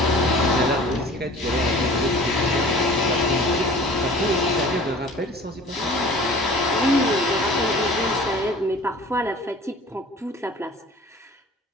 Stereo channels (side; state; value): both; normal; correlation 0.45